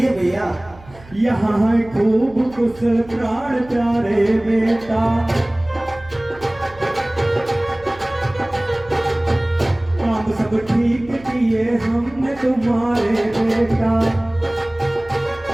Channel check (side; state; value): right; noise; hum, 22 dB below the sound